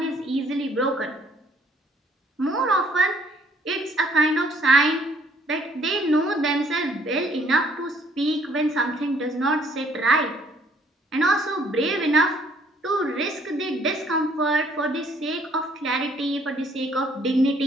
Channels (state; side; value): normal; both; correlation 0.63